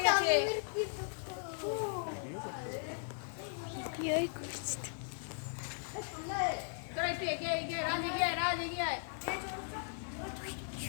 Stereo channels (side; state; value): right; silent; digital silence